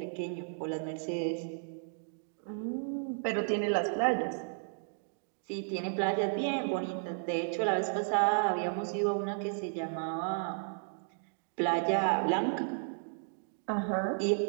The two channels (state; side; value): silent; left; digital silence